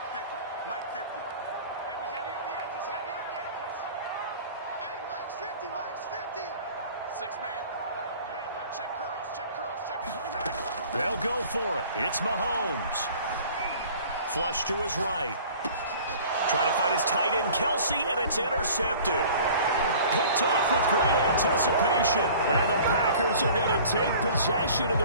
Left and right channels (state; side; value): inverted; both; correlation -0.47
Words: They'll go for it. It's Mahomes. Flush to his right. Trying to find his tight end, Kelsey, and it's intercepted. Picked off with great anticipation. And the Packers are going to take possession of